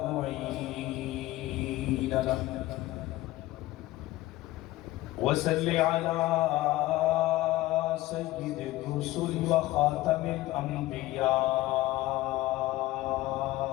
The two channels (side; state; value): right; quieter; 17.1 dB